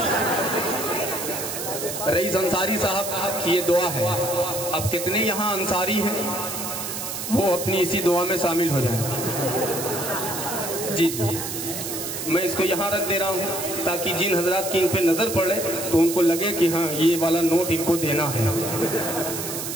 رئیس انصاری صاحب کی یہ دعا ہے. اب کتنے یہاں انصاری ہیں وہ اپنی اسی دعا میں شامل ہو جائیں. جی میں اس کو یہاں رکھ دے رہا ہوں تاکہ جن حضرات کی ان پہ نظر پڑے تو ان کو لگے کہ ہاں یہ والا نوٹ ان کو دینا ہے.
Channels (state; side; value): noise; right; hiss, 5 dB below the sound